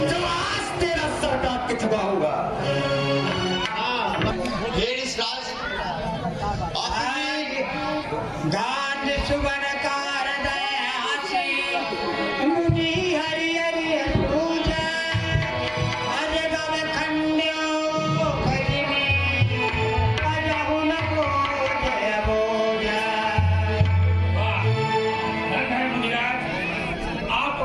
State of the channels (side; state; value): both; identical; correlation 1.00